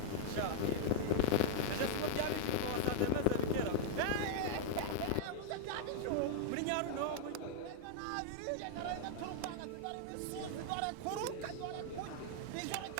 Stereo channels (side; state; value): both; different; correlation -0.01